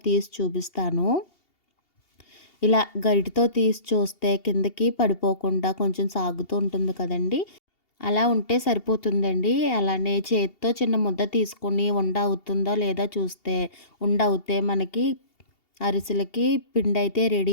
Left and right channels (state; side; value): late; right; 2.8 ms